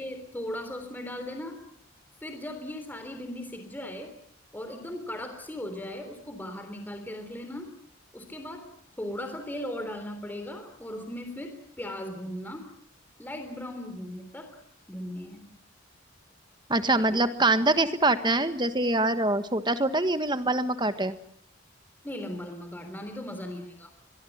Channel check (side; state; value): both; normal; correlation 0.35